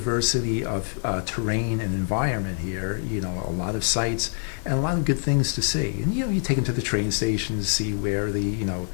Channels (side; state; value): right; silent; digital silence